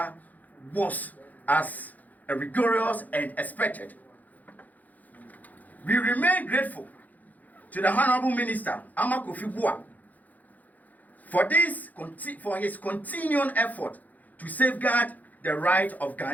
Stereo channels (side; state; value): right; late; 0.080 ms